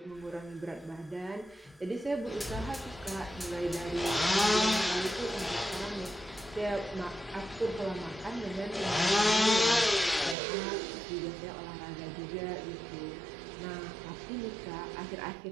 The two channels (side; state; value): left; drops out; at 10.4 s